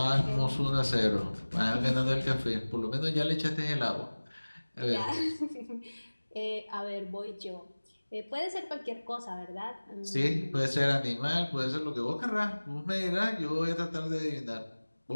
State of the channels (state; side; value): inverted; both; correlation -1.00